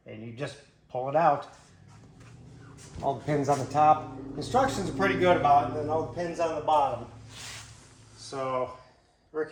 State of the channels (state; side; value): identical; both; correlation 1.00